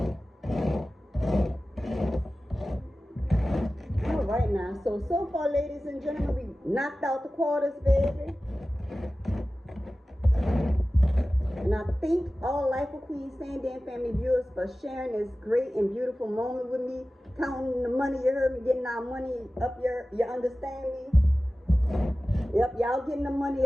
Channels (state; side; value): normal; both; correlation 0.96